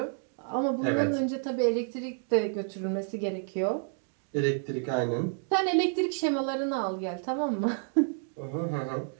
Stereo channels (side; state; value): left; silent; 58 dB below the other